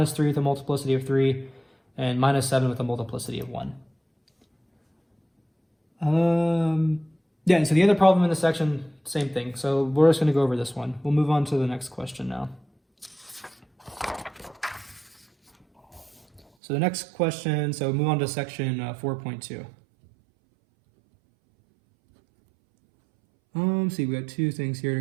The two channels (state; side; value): drops out; left; at 16.4 s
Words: 3 with a multiplicity of 3, and minus 7 with a multiplicity of 1. Yeah, so the other problem in this section, same thing. So we're just going to go over this one. We'll move on to the next question now. So the next question, so move on to section 4.2. See, we got 2 things here